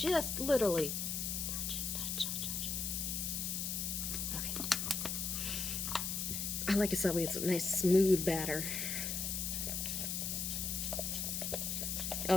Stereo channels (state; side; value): noise; left; hiss, 1 dB below the sound